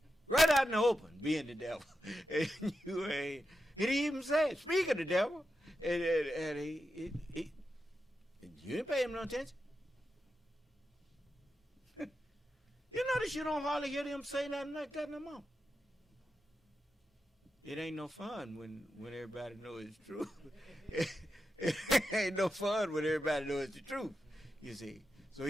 Right out in the open, being the devil. And you ain't, he didn't even say it. Speak of the devil. And he you didn't pay him no attention. You notice you don't hardly hear them say nothing like that no more. It ain't no fun when everybody knows it's true. It ain't no fun when everybody knows it's the truth, you see. So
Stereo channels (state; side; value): normal; both; correlation 0.89